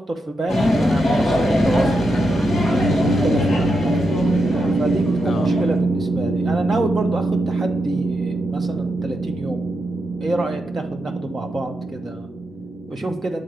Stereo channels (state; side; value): normal; both; correlation 0.85